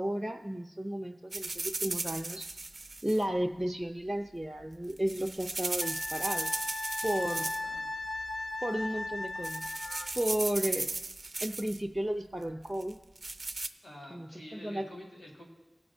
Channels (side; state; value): both; normal; correlation 0.97